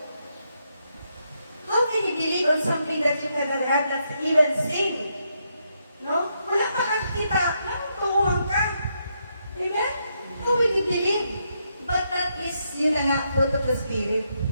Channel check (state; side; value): inverted; both; correlation -0.79